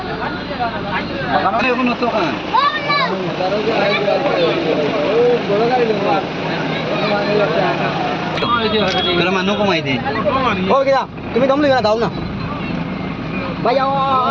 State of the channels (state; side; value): identical; both; correlation 1.00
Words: এখন তো কান বড় গাড়ি দেবা मेरा मानो कमाई दे ओ क्या तुम्हें दम लेना दाओ ना भाई